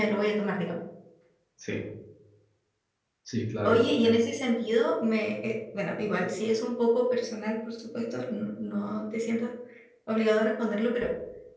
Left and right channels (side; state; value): both; identical; correlation 1.00